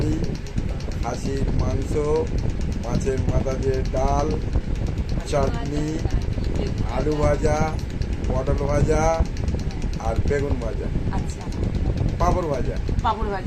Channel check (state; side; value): identical; both; correlation 1.00